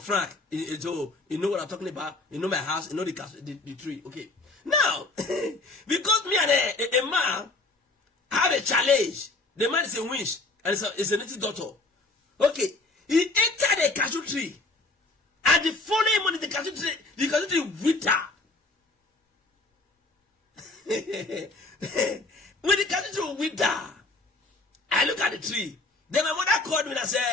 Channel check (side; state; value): right; quieter; 3.2 dB